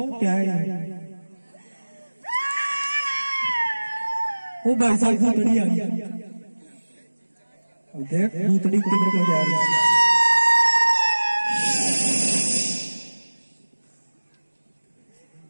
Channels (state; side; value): inverted; both; correlation -1.00